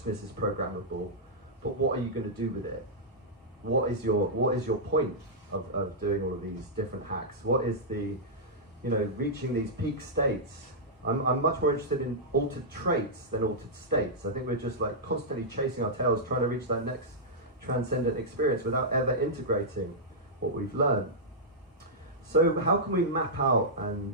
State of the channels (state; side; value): normal; both; correlation -0.10